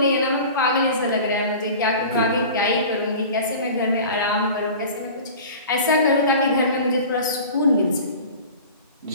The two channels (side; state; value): both; inverted; correlation -0.38